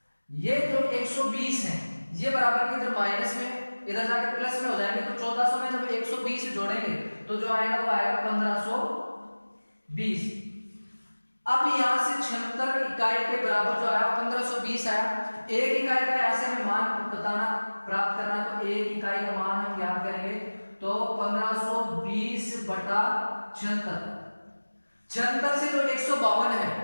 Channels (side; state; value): both; inverted; correlation -1.00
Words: ये जो 120 है ये बराबर के इधर माइनस में इधर जाके प्लस में हो जाएंगे, तो 1400 में जब 120 जोड़ेंगे तो जो आएगा वो आएगा 1520। अब यहां से 76 इकाई के बराबर जो आया 1520 आया। एक इकाई का यहां से हमें मान बताना प्राप्त करना, तो एक इकाई का मान हम याद करेंगे तो 1520 बटा 76। 76 से जो 152 है